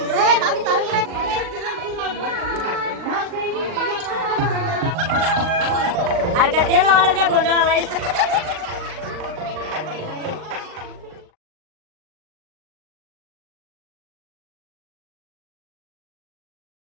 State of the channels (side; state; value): left; late; 39 ms